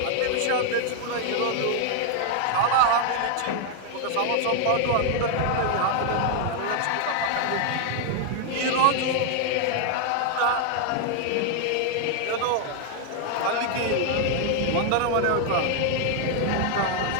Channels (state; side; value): different; both; correlation 0.00